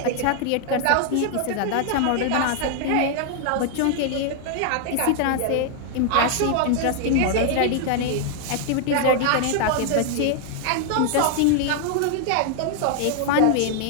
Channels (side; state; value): both; different; correlation 0.00